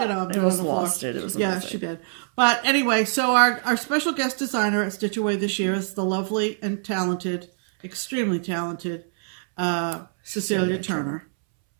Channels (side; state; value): left; silent; 62 dB below the other